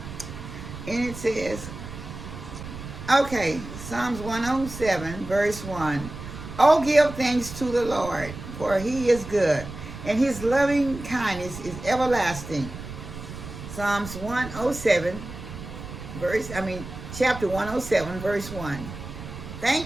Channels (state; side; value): noise; right; rumble, 11 dB below the sound